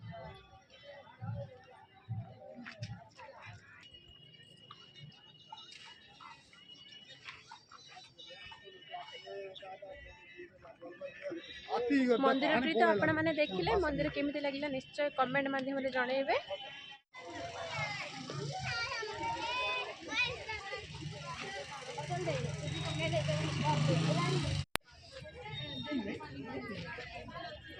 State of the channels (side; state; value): both; identical; correlation 1.00